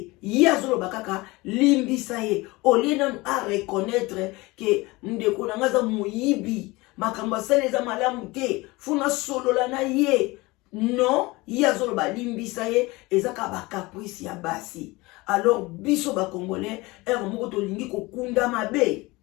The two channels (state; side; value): quieter; right; 22.4 dB